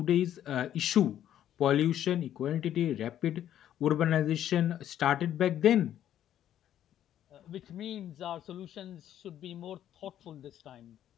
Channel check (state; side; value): quieter; right; 11.1 dB